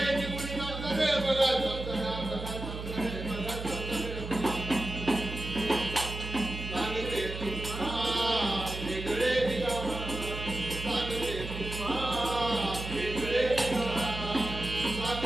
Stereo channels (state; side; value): noise; right; hum, 7 dB below the sound